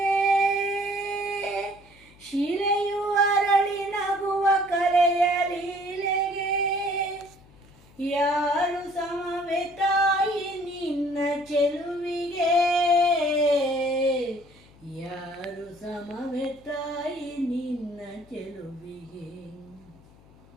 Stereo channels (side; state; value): left; noise; hum, 26 dB below the sound